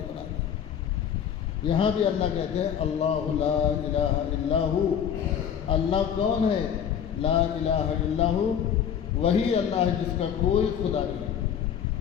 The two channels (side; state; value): right; quieter; 8.6 dB